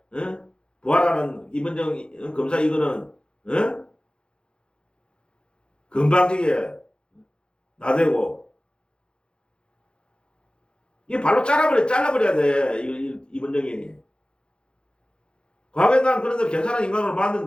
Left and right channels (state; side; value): late; right; 0.052 ms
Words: 부활하는 임원정 검사 이거는 건방지게 나대고 이 발로 잘라버려야 돼 임원정이. 과거에 난 그런데 괜찮은 인간으로